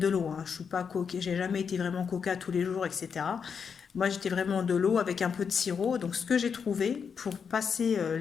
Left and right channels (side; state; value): right; quieter; 6.5 dB